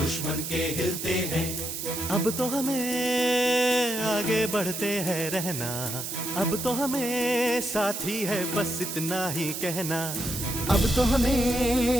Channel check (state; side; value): noise; right; hiss, 5 dB below the sound